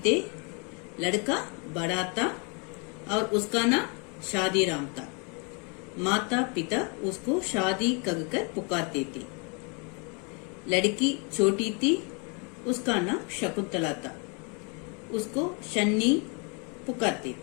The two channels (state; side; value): quieter; right; 34.3 dB